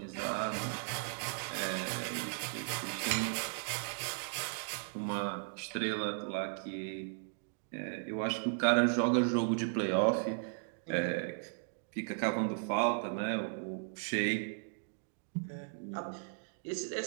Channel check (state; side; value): silent; left; digital silence